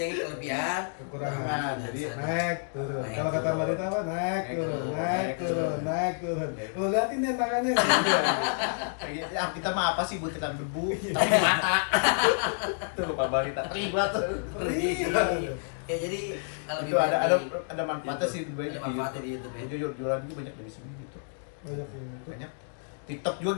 kelebihan. Kekurangan. Jadi Naik turun. Naik, Kalau kata turun. Marita apa? Naik turun, turun, naik naik turun, turun. naik turun. Lu liatin nih tangannya. ya, kita mah apa sih butiran debu tapi di mata. Tuh lupa balita. Terlibat. Ya jadi lebih Itu ada banyak di ada manfaatnya sih YouTube. Ada manfaatnya di YouTube ya. Jadi jualan juga banyak dari sini gitu. Banyak yang itu. Banyak. TikTok juga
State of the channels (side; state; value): right; silent; digital silence